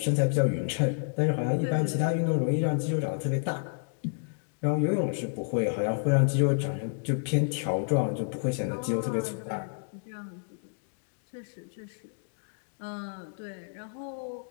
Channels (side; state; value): right; silent; digital silence